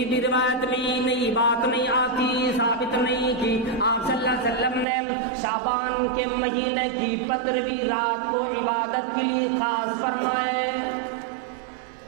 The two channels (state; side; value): drops out; left; at 4.9 s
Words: بھی روایت میں نئی بات نہیں آتی، ثابت نہیں کہ آپ صلی اللہ علیہ وسلم نے شعبان کے مہینے کی 15ویں رات کو عبادت کے لیے خاص فرمائے،